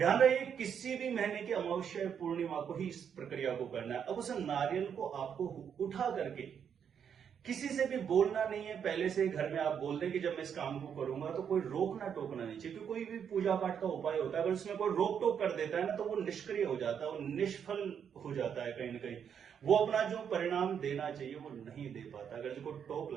रहे, किसी भी महीने की अमावस्या पूर्णिमा को ही इस प्रक्रिया को करना है। अब उस नारियल को आपको उठा करके किसी से भी बोलना नहीं है। पहले से घर में आप बोल दें कि जब मैं इस काम को करूंगा तो कोई रोकना टोकना नहीं चाहिए, क्योंकि कोई भी पूजा पाठ का उपाय होता है, अगर उसमें कोई रोक टोक कर देता है ना, तो वो निष्क्रिय हो जाता है, वो निष्फल हो जाता है। कहीं ना कहीं वो अपना जो परिणाम देना चाहिए वो नहीं दे पाता, अगर जो कोई टोक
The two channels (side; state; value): left; quieter; 7.8 dB